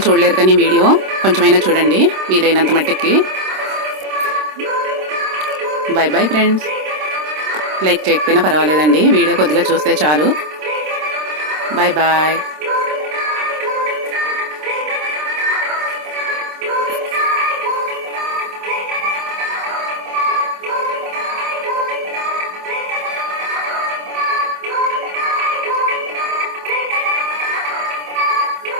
చూడలేరు కానీ వీడియో కొంచెమైనా చూడండి వీలైనంత మట్టుకి. Bye bye friends. లైక్ చేయకపోయినా పర్వాలేదండి, వీడియో కొద్దిగా చూస్తే చాలు. Bye bye.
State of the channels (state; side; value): late; left; 26 ms